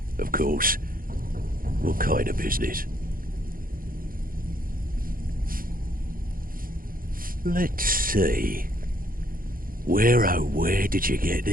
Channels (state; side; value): late; left; 0.41 ms